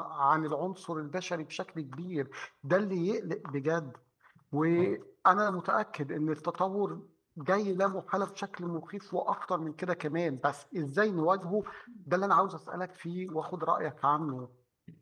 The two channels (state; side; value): identical; both; correlation 1.00